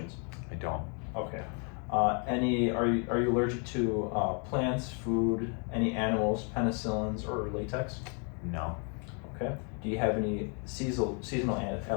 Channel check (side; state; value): right; quieter; 38.4 dB